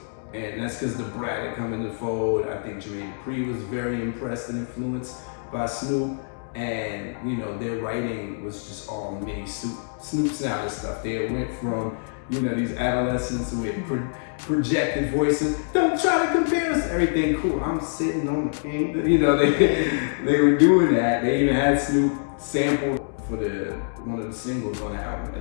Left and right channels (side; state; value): right; silent; digital silence